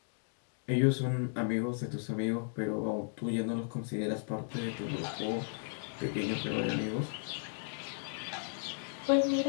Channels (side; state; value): right; silent; digital silence